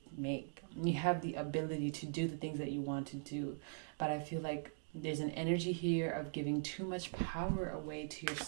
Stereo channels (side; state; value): left; silent; digital silence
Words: make. You have the ability to do the things that you want to do. But I feel like there's an energy here of giving too much power away to your